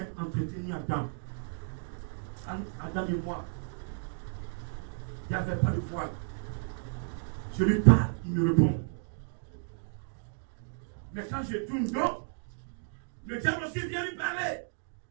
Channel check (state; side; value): silent; left; digital silence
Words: entretenir Adam. Adam et moi, il n'y avait pas de voile. Je lui parle, il me répond. Mais quand je tourne dos, le diable aussi vient lui parler.